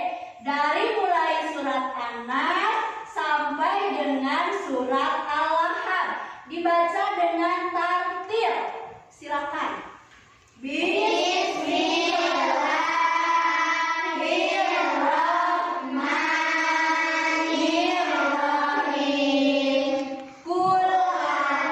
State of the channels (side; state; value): both; identical; correlation 1.00